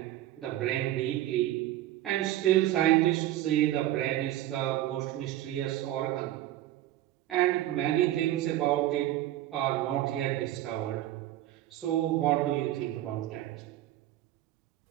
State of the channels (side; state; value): left; quieter; 14.1 dB